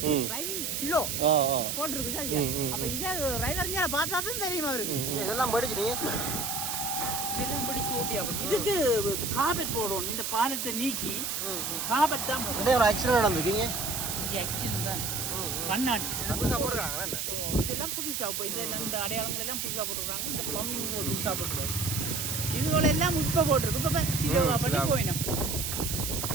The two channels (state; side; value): noise; right; hiss, 2 dB below the sound